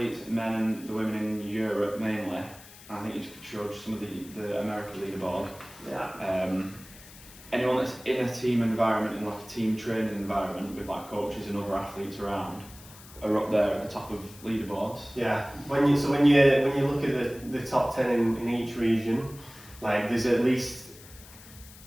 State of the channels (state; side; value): noise; left; hiss, 19 dB below the sound